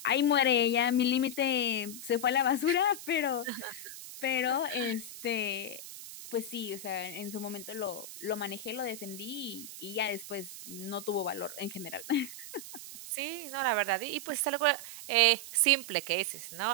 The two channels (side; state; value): right; noise; hiss, 12 dB below the sound